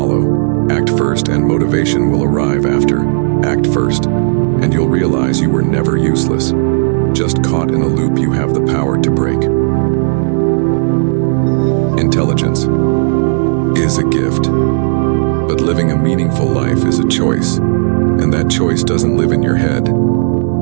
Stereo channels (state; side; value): silent; left; digital silence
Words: Act first and motivation will arrive after. Act first, and you'll realize you were never useless. Just caught in a loop you have the power to break. Intelligence is a gift, but living a meaningful life is a choice, and that choice doesn't live in your head.